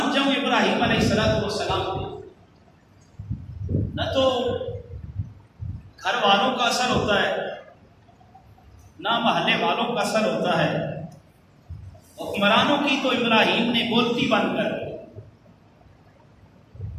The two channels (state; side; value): identical; both; correlation 1.00